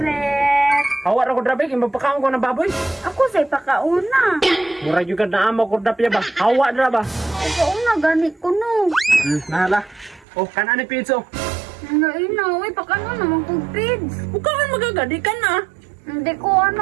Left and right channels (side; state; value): left; drops out; at 10.2 s